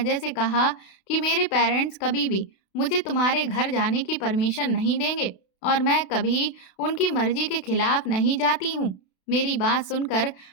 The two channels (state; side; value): late; right; 32 ms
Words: से कहा कि मेरे पेरेंट्स कभी भी मुझे तुम्हारे घर जाने की परमिशन नहीं देंगे, और मैं कभी उनकी मर्जी के खिलाफ नहीं जाती हूँ। मेरी बात सुनकर